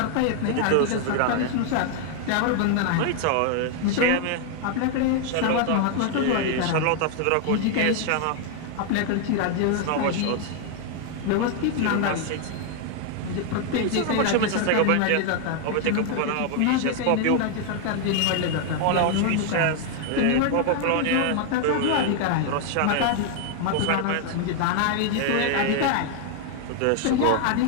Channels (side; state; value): both; different; correlation 0.00